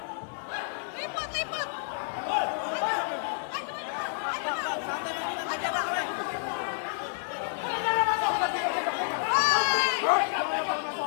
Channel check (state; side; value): silent; right; digital silence